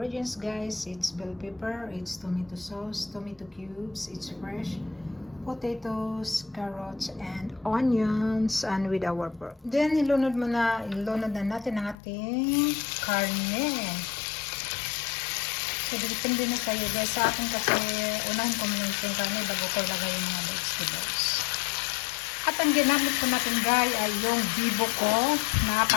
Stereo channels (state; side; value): drops out; right; at 12.0 s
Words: guys. It's bell pepper, it's tomato sauce, tomato cubes, it's fresh, potatoes, carrots, and onions, and with our pork. Then ilunod na natin ang ating karne. So, depende na sa'yo guys. Sa akin kasi, unahin ko muna yung karne bago ko lagay yung mga vegetables. At ang ginamit ko natin guys ay yung bibo ko na